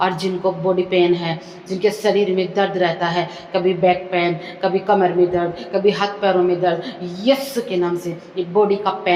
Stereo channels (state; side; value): identical; both; correlation 1.00